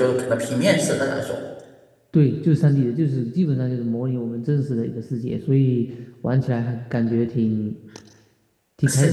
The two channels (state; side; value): identical; both; correlation 1.00